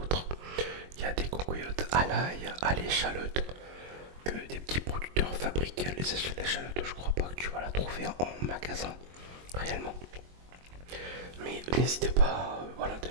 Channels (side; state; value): left; late; 22 ms